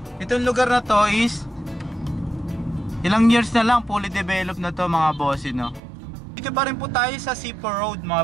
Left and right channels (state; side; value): drops out; left; at 5.8 s